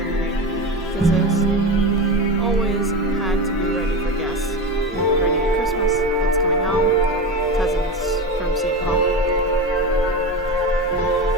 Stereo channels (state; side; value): normal; both; correlation 0.23